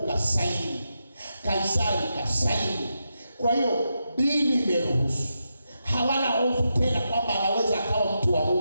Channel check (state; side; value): inverted; both; correlation -0.86